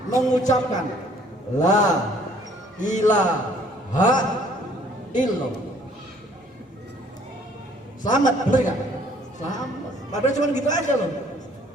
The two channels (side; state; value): both; normal; correlation 0.59